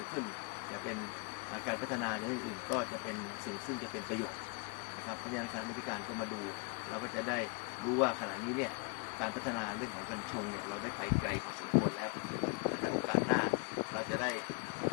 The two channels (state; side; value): quieter; right; 31.4 dB